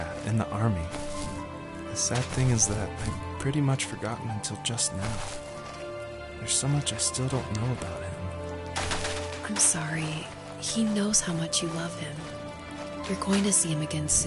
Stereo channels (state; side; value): identical; both; correlation 1.00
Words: in the army. The sad thing is that I've pretty much forgotten until just now. There's so much I still don't know about him. I'm sorry. He knows how much you love him. You're going to see him again